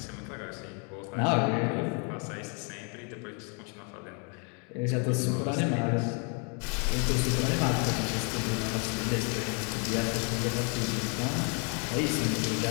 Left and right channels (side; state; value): right; quieter; 36.9 dB